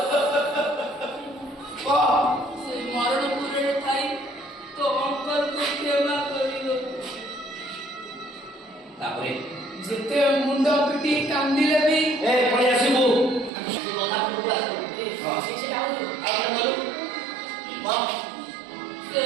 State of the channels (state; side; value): drops out; left; at 13.5 s